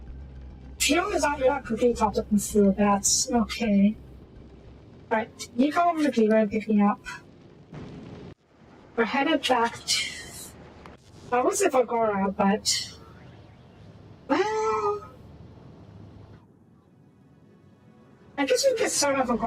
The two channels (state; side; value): identical; both; correlation 1.00